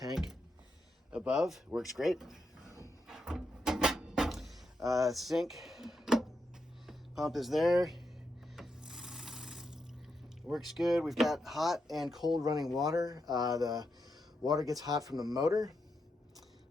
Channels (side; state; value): both; normal; correlation 0.84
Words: above, works great. Sink pump is there, works good. We've got hot and cold running water. The water gets hot from the motor,